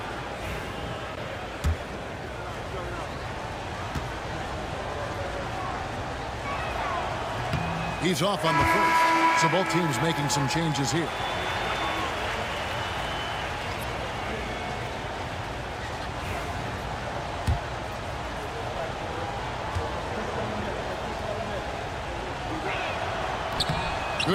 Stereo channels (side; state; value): both; identical; correlation 1.00